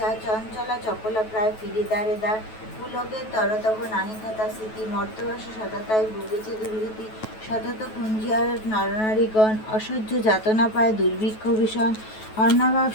চঞ্চলা চপলা প্রায় ফিরে দ্বারে দ্বার। পুলকের তরতব নাহি কথা স্মৃতি, মর্তবাসে সততায় ভুগেছে দুর্গতি। সতত কুঞ্জিয়ার নরনারীগণ, অসহ্য যাতনা পায় দুর্ভিক্ষ ভীষণ। অন্নাভাব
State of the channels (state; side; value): late; right; 9.2 ms